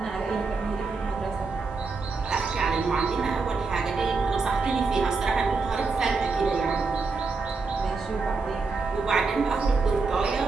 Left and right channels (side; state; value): left; quieter; 4.3 dB